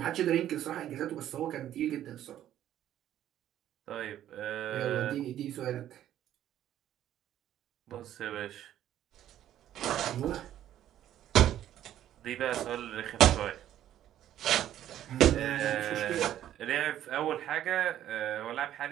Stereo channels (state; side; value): quieter; left; 11.8 dB